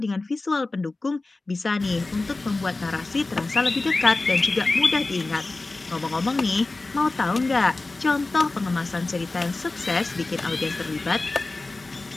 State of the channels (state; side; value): quieter; right; 3.3 dB